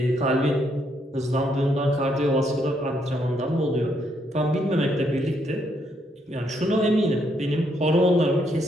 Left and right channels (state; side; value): normal; both; correlation 0.74